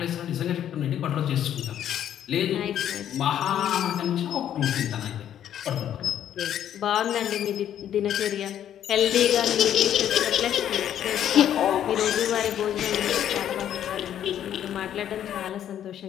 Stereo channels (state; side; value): quieter; right; 10.4 dB